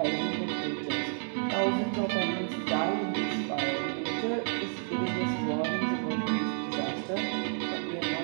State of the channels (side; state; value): left; silent; 57 dB below the other